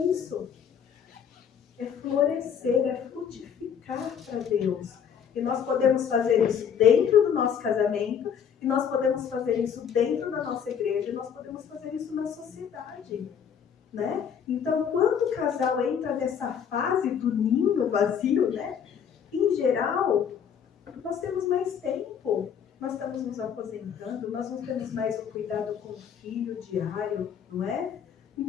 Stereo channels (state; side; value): quieter; right; 7.8 dB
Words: isso. É florescer, é frutificar para Deus. E nós podemos fazer isso dentro do nosso casamento, e nós podemos fazer isso dentro da nossa igreja, e nós podemos fazer isso na sociedade, né? Então, quando o casal entra nessa fase do ninho vazio, né? Em geral, nós temos mais tempo. Nós estamos nos aposentando, nós não temos mais o cuidado com o filho diário, não é?